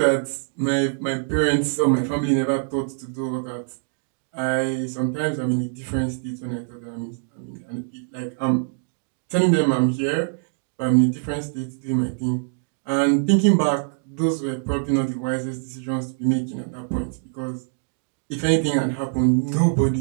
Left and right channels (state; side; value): silent; left; digital silence